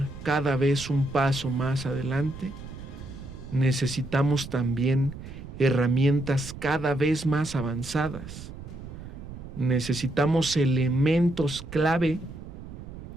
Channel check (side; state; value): right; noise; rumble, 12 dB below the sound